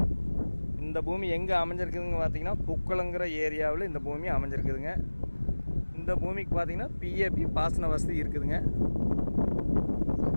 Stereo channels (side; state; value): both; inverted; correlation -1.00